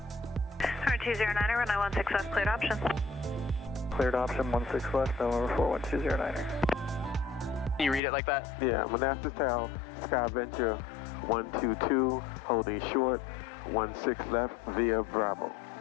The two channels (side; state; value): right; drops out; at 8.0 s